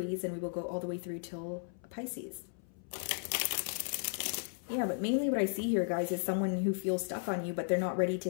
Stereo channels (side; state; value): right; silent; 54 dB below the other